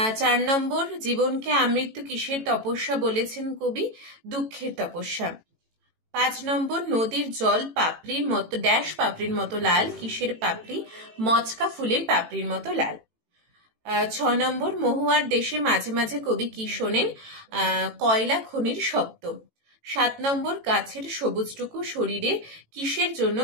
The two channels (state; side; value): late; left; 18 ms